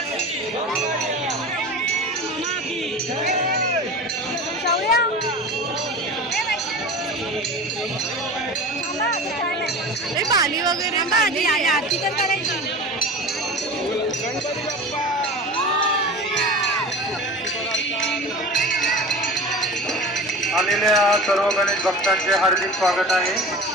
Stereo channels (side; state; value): both; normal; correlation 0.34